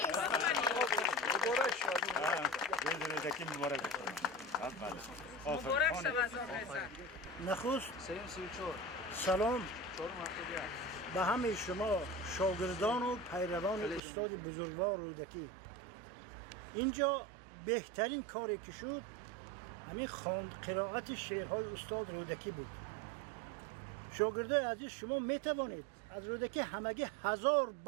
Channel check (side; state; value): left; drops out; at 14.0 s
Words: است. مبارک شود نخست سلام به همه شما شاگردان و پیروان استاد بزرگوار رودکی. اینجا بهترین کاری که شد همین قرائت شعرهای استاد رودکی بود. شاگردای عزیز شما می توانید از رودکی همگی 1000